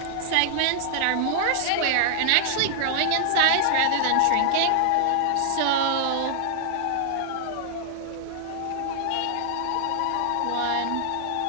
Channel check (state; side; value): different; both; correlation 0.00